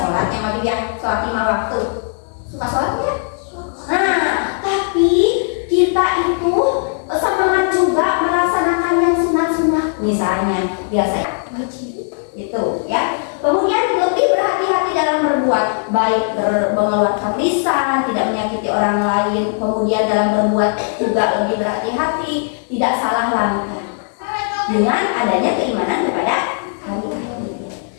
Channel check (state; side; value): silent; right; 65 dB below the other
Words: yang wajib ya, sholat 5 waktu. Suka sholat ya? Nah, tapi kita itu semangat juga melaksanakan yang sunat-sunat, misalnya biasa wajib itu ya. Kemudian lebih berhati-hati dalam berbuat baik, mengeluarkan lisan, tidak menyakiti orang lain. Kemudian dalam berbuat juga lebih berhati-hati, tidak salah langkah dengan adanya keimanan kepada hari akhir.